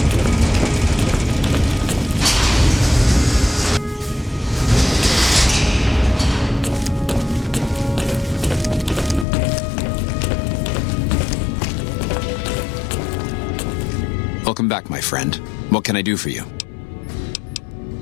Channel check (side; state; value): right; drops out; at 9.2 s